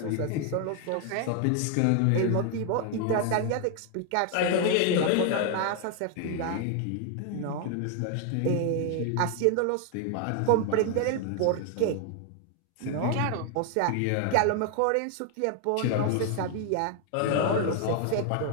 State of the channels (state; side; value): different; both; correlation 0.00